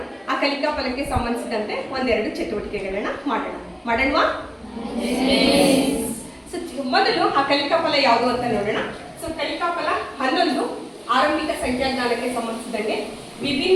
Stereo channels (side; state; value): both; identical; correlation 1.00